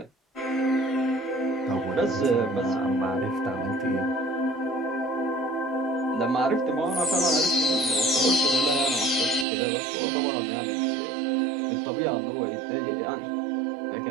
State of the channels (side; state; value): left; drops out; at 9.5 s